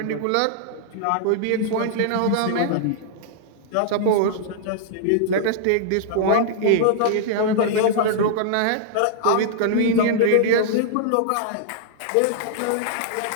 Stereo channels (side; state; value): both; different; correlation -0.01